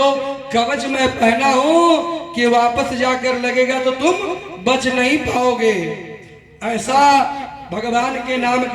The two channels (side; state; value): both; identical; correlation 1.00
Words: कवच मैं पहना हूं कि वापस जाकर लगेगा तो तुम बच नहीं पाओगे। ऐसा भगवान के नाम